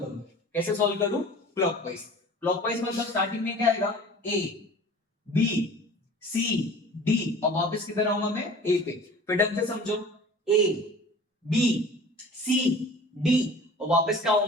कैसे सॉल्व करूं? क्लॉकवाइज। क्लॉकवाइज मतलब स्टार्टिंग में क्या आएगा, ए बी सी डी, और वापस किधर आऊंगा मैं, ए पे। फिर ढंग से समझो, ए बी सी डी, और वापस क्या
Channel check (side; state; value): both; normal; correlation 0.43